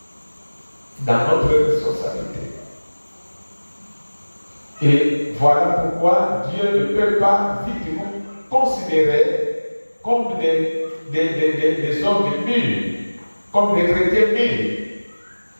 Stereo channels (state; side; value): inverted; both; correlation -1.00